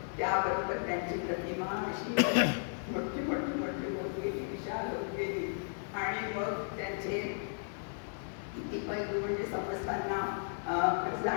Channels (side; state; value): right; silent; 55 dB below the other